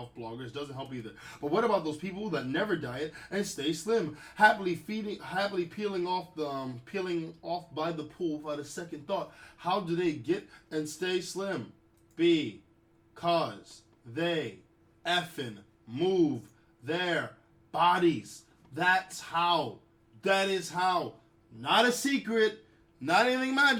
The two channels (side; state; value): both; identical; correlation 1.00